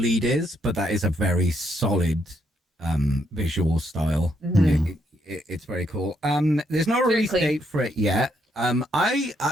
is, but that is a very solid visual style. It's very cool. There's no release date for it yet. I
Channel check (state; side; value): normal; both; correlation 0.75